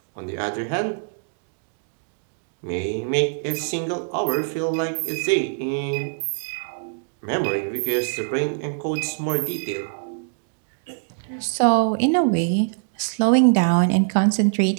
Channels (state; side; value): silent; left; digital silence